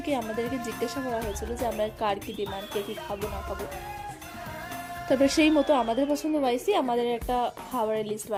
আমাদেরকে জিজ্ঞাসা করা হয়েছিল যে আমরা কার কি ডিমান্ড, কে কি খাবো না খাবো। তারপরে সেই মতো আমাদের পছন্দ ওয়াইজই আমাদের একটা খাবারের লিস্ট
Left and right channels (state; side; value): identical; both; correlation 1.00